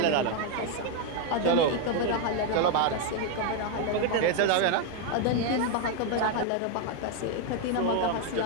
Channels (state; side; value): different; both; correlation 0.01